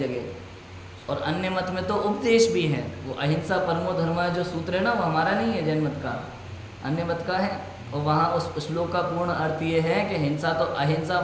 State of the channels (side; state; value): both; identical; correlation 1.00